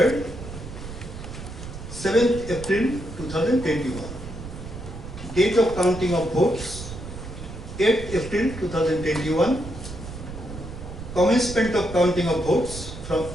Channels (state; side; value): noise; right; rumble, 11 dB below the sound